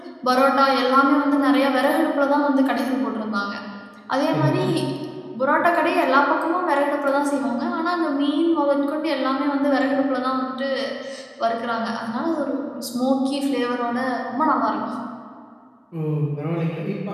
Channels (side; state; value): both; identical; correlation 1.00